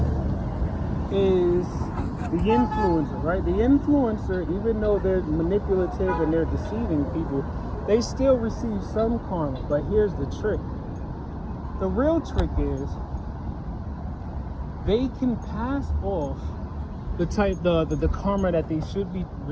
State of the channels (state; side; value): identical; both; correlation 1.00